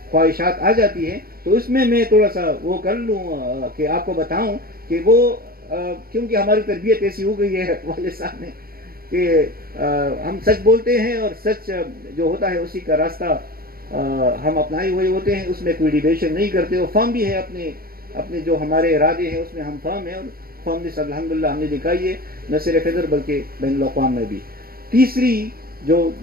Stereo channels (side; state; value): left; late; 0.43 ms